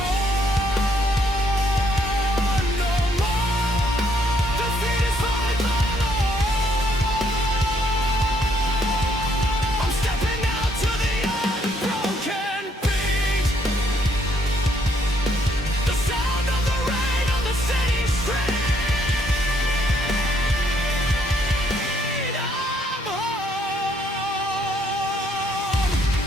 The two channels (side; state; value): both; normal; correlation 0.69